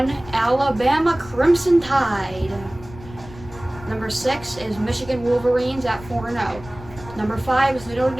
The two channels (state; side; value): noise; left; rumble, 17 dB below the sound